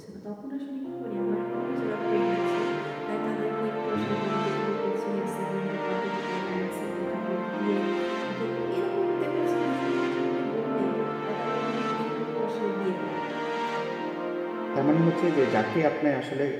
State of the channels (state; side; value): identical; both; correlation 1.00